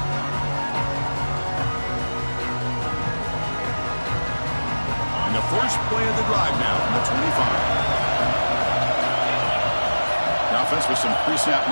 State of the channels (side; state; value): both; inverted; correlation -1.00